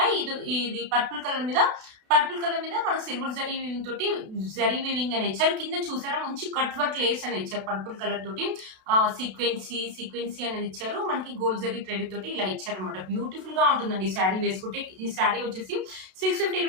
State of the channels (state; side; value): late; left; 32 ms